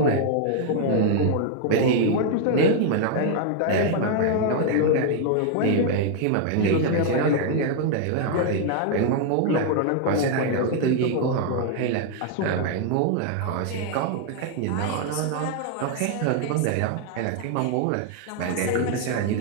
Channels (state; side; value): different; both; correlation 0.00